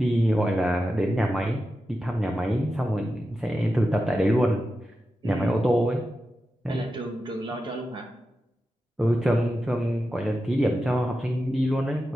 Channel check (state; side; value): normal; both; correlation 0.91